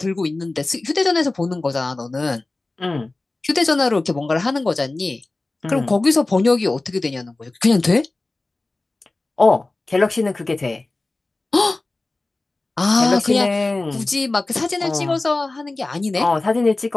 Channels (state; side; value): quieter; right; 3.1 dB